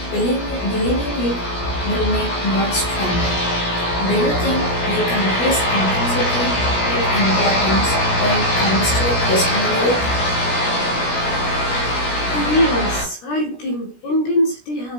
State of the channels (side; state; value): right; late; 17 ms